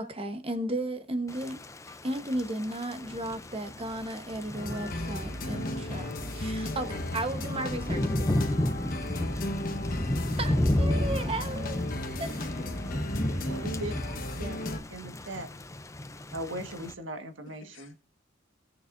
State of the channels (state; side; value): normal; both; correlation 0.73